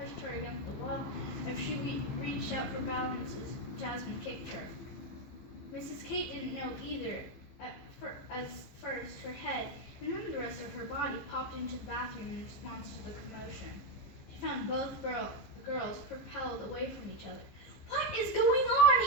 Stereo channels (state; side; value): late; right; 15 ms